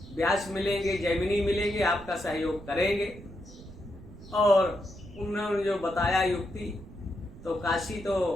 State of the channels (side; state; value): right; noise; rumble, 17 dB below the sound